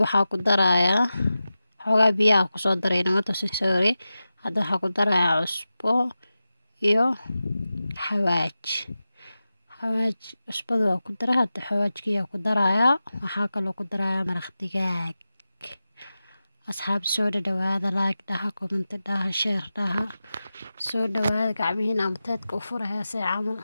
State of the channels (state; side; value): inverted; both; correlation -0.94